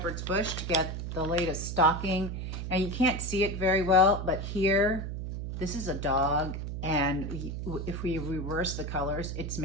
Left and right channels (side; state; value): right; noise; hum, 5 dB below the sound